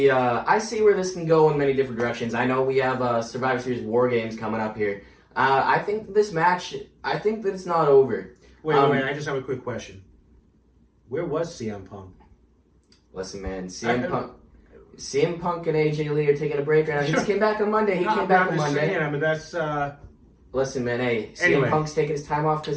where this can go in many different directions. I know we have Survivor Series War Games coming up here. I think this match, I think that it's not over. Wait, I just have a quick question. Where was CM Punk? Listen, man, CM Punk and AJ Lee are taking a break right now. He just came back on Monday. That's. Listen, man, hey, anyway. CM Punk's taking his time off because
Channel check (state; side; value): identical; both; correlation 1.00